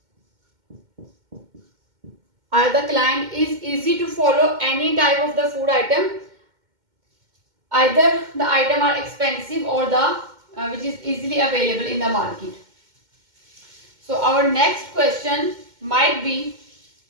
The client is easy to follow any type of the food item, either the item are expensive or the which is easily available in the market. So our next question might be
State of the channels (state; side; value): late; left; 2.1 ms